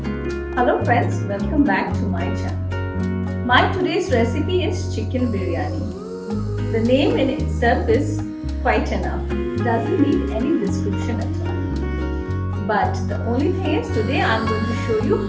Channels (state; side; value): identical; both; correlation 1.00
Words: friends, welcome back to my channel. My today's recipe is chicken biryani. The name in itself is quite enough. It doesn't need any description at all. But the only thing is today I am going to show you